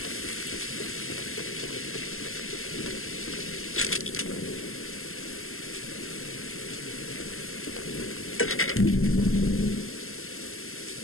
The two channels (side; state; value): right; late; 0.62 ms